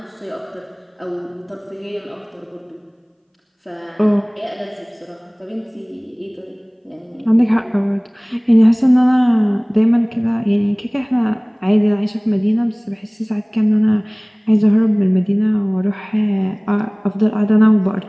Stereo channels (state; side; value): identical; both; correlation 1.00